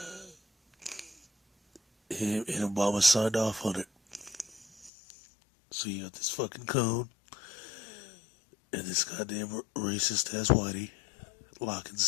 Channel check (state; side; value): drops out; right; at 4.9 s